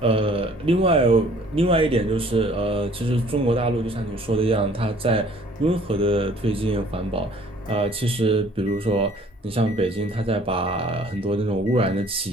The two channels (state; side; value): normal; both; correlation 0.56